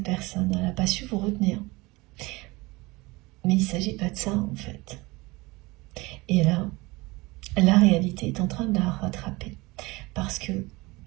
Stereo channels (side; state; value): left; quieter; 22.9 dB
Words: personne, elle n'a pas su vous retenir. Mais il ne s'agit pas de ça en fait. Et là, la réalité est en train de la rattraper. Parce que,